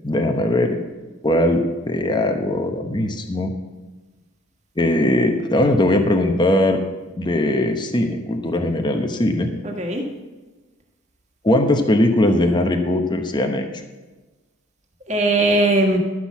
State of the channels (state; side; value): normal; both; correlation 0.61